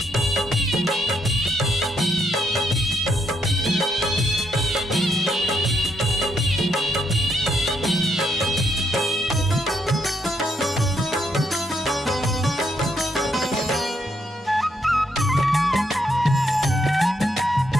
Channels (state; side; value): normal; both; correlation 0.77